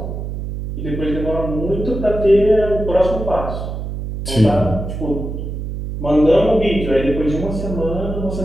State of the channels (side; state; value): right; noise; hum, 6 dB below the sound